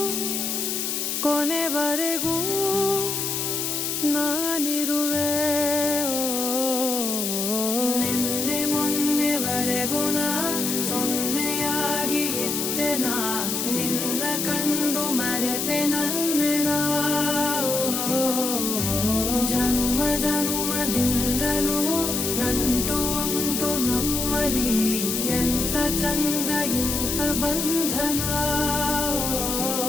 ಕೊನೆವರೆಗೂ ನಾನಿರುವೆ ನಿನ್ನೆ ಮೊನ್ನೆವರೆಗೂ ನಾ ಸೊನ್ನೆಯಾಗಿ ಇದ್ದೆ ನಾ ನಿನ್ನ ಕಂಡು ಮರೆತೆ ನನ್ನೆನ ಜನುಮ ಜನುಮದಿಂದಲೂ ನಂಟು ಉಂಟು ನಮ್ಮಲಿ ಎಂತ ಚಂದ ಇಂಥ ಬಂಧನ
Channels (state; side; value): noise; left; hiss, 1 dB below the sound